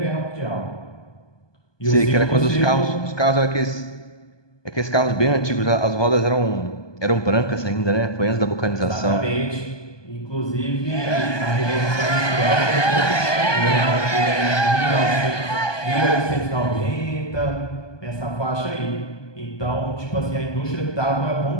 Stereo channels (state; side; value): late; right; 1.2 ms